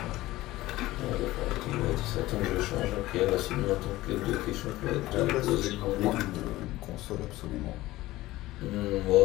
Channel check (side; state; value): right; quieter; 17.5 dB